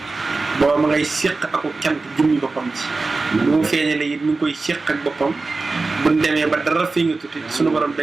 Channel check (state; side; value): quieter; left; 3.7 dB